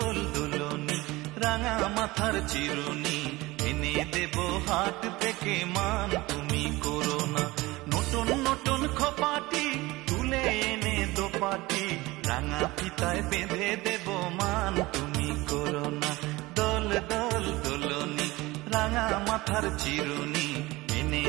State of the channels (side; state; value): left; quieter; 20.6 dB